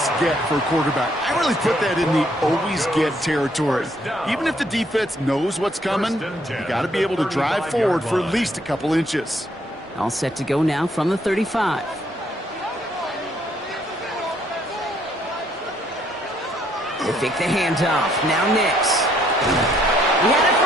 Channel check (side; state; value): both; normal; correlation 0.68